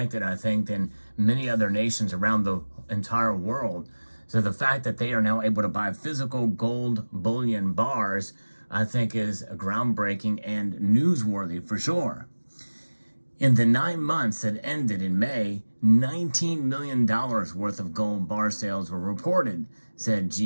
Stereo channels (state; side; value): inverted; both; correlation -1.00